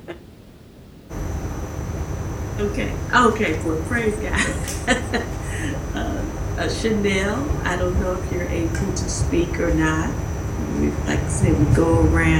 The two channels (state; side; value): identical; both; correlation 1.00